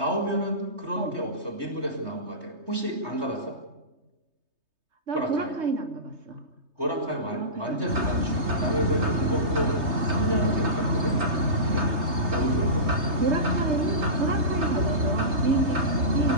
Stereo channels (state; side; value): late; left; 3.3 ms